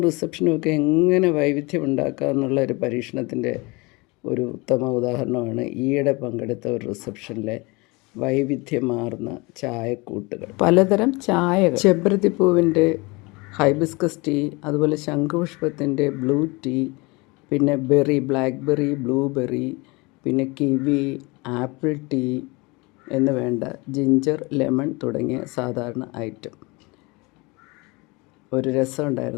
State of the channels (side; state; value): right; quieter; 25.8 dB